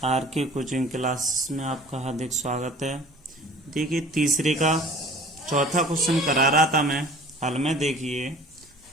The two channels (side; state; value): both; normal; correlation 0.46